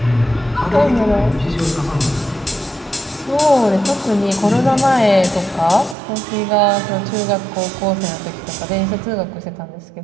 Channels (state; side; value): drops out; left; at 6.0 s